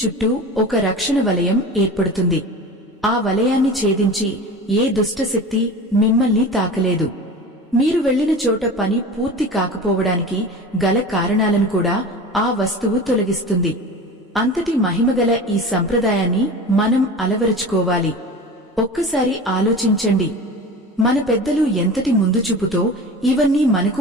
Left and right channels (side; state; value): both; normal; correlation 0.34